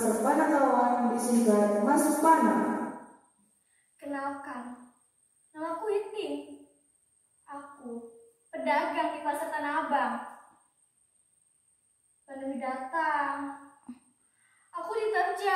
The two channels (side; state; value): both; identical; correlation 1.00